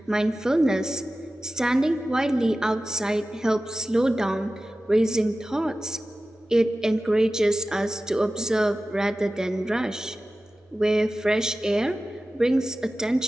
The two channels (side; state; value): both; normal; correlation 0.95